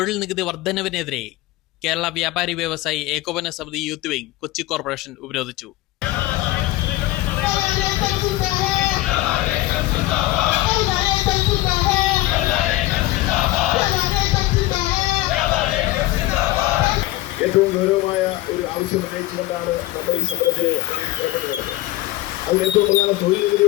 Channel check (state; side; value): quieter; right; 17.4 dB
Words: നികുതി വർധനവിനെതിരെ കേരള വ്യാപാരി വ്യവസായി ഏകോപന സമിതി യൂത്ത് വിംഗ് കൊച്ചി കോർപ്പറേഷൻ ഉപരോധിച്ചു. ഏറ്റവും ഗൗരവമായ ഒരു ആവശ്യം ഉന്നയിച്ചുകൊണ്ടാണ് നമ്മൾ ഈ സമരത്തിന് ഏർപ്പെട്ടിട്ടുള്ളത്. അതിൽ ഏറ്റവും പ്രധാനം തൊഴിൽ